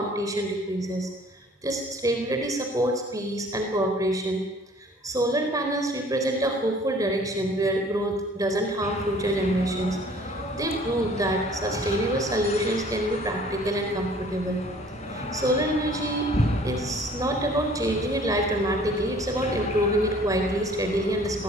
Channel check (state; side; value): normal; both; correlation 0.53